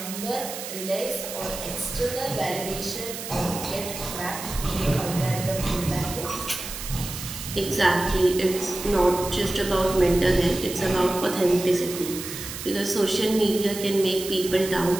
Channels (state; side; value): noise; right; hiss, 8 dB below the sound